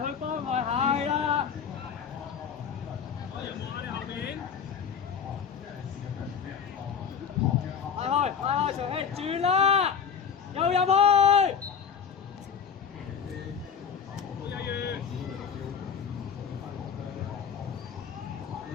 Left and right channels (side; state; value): right; quieter; 7.0 dB